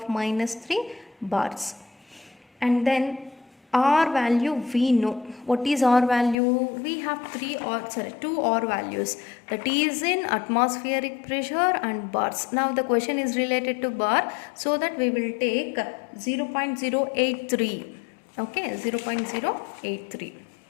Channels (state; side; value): drops out; right; at 6.4 s